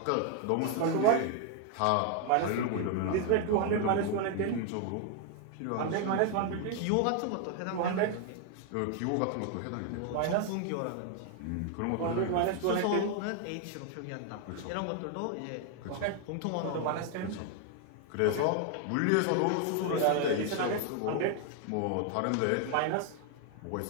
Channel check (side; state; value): both; different; correlation 0.00